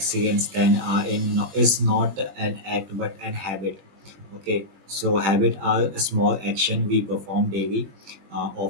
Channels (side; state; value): left; late; 20 ms